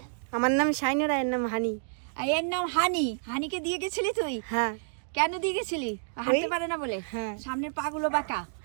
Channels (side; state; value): left; silent; digital silence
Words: আমার নাম শাইনুর, এর নাম হানি। আর এর নাম হানি। হানিকে দিয়ে গেছিলি তুই? হ্যাঁ। কেন দিয়ে গেছিলি? হাঁটতে পারে না বলে? হ্যাঁ। সামনের পা গুলো বাঁকা।